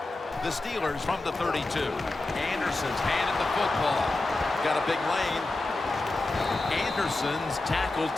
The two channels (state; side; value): quieter; right; 3.0 dB